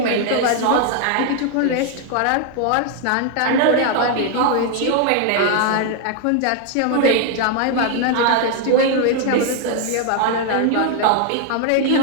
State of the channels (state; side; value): different; both; correlation 0.00